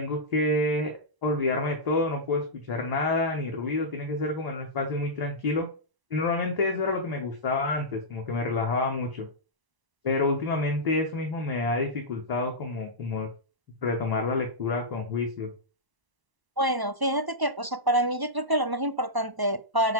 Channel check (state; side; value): late; left; 1.0 ms